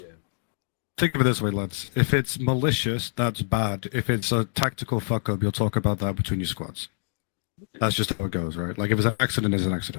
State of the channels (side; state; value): right; silent; digital silence